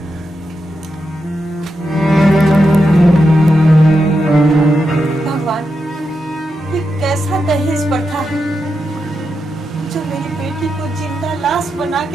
भगवान, ये कैसा दहेज प्रथा है जो मेरी बेटी को जिंदा लाश बना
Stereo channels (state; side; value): normal; both; correlation 0.86